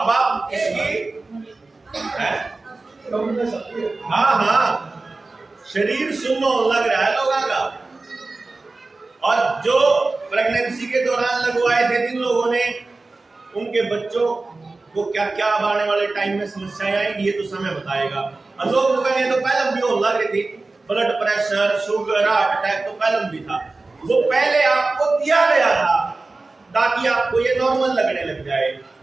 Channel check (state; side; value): quieter; left; 3.4 dB